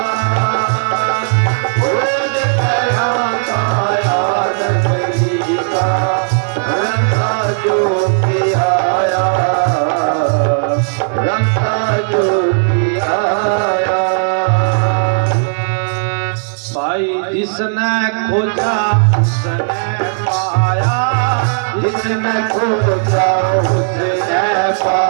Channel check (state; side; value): silent; left; digital silence